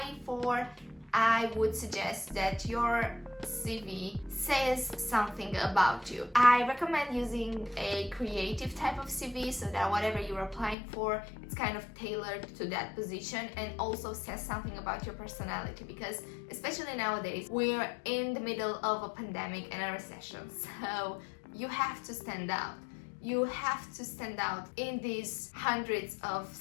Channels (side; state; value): right; drops out; at 10.8 s